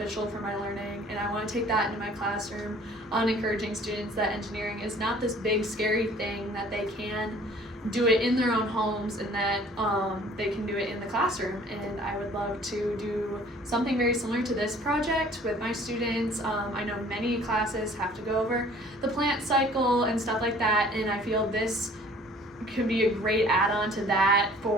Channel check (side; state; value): both; normal; correlation 0.52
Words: for my learning, and I want to take that into my classroom on encouraging students that engineering is not this big scary thing, that they can do it in their own homes, and that they can do it in the classroom. And I would love to do something very similar to this project with my students. I know many classes have to go over the plant cycle and stuff like that, and I feel this could be a great add-on to that